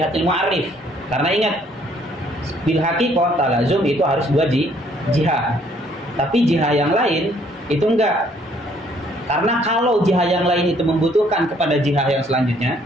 mu'arrif. Karena ingat bil haqiqah talazum itu harus dua jihah. Tapi jihah yang lain itu enggak. Karena kalau jihah yang lain itu membutuhkan kepada jihah yang selanjutnya,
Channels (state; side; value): normal; both; correlation 0.64